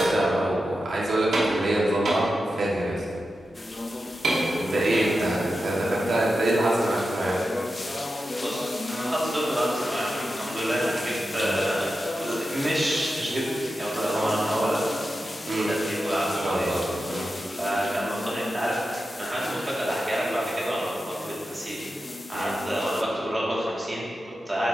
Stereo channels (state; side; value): normal; both; correlation 0.91